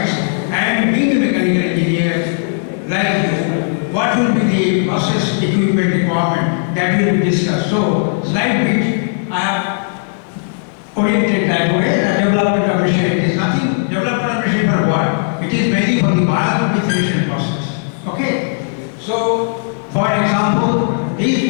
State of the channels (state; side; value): silent; right; digital silence